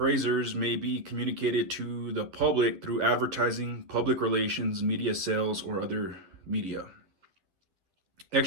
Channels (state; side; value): late; left; 11 ms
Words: may be communicated to the public through advertising, public relations, media sales, or other media.